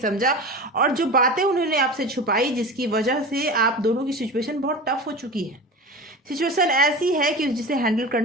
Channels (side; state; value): both; normal; correlation 0.31